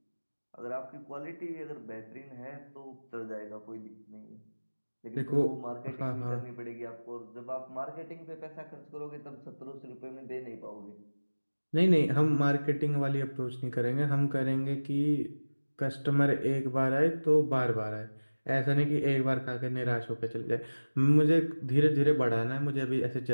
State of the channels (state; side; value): inverted; both; correlation -1.00